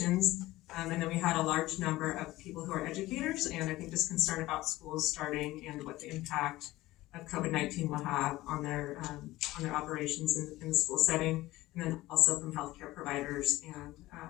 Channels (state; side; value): quieter; right; 17.6 dB